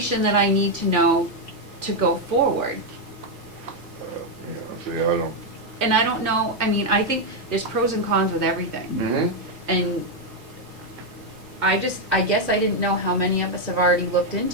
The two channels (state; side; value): normal; both; correlation 0.02